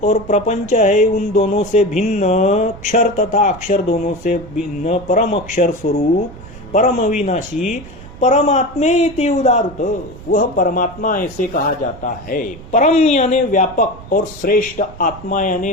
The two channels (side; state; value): right; noise; rumble, 17 dB below the sound